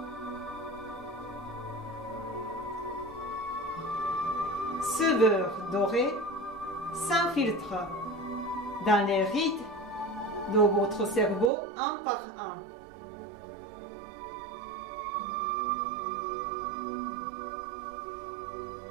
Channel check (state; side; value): drops out; left; at 11.5 s